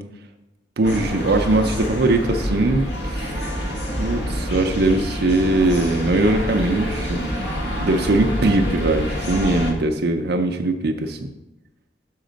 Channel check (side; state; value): both; normal; correlation 0.58